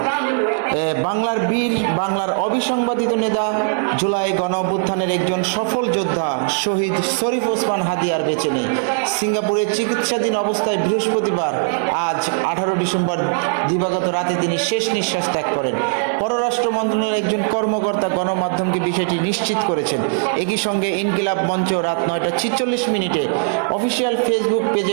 বাংলার বীর, বাংলার অবিসংবাদিত নেতা, জুলাই গণ অভ্যুত্থানের একজন সফল যোদ্ধা শহীদ শরীফ ওসমান হাদি আর বেঁচে নেই। সিঙ্গাপুরের চিকিৎসাধীন অবস্থায় বৃহস্পতিবার আজ 18 ডিসেম্বর দিবাগত রাতে তিনি শেষ নিঃশ্বাস ত্যাগ করেন। পররাষ্ট্র মন্ত্রণালয়ের একজন কর্মকর্তা গণমাধ্যমকে বিষয়টি নিশ্চিত করেছেন। একই সঙ্গে ইনকিলাব মঞ্চ রাত 9:46 অফিসিয়াল ফেসবুক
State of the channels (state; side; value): silent; left; digital silence